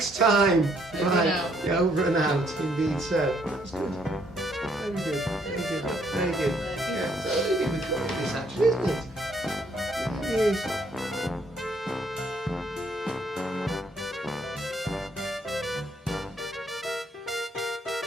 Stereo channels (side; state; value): both; normal; correlation 0.68